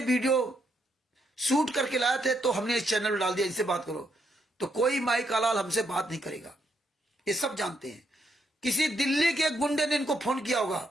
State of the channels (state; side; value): normal; both; correlation 0.77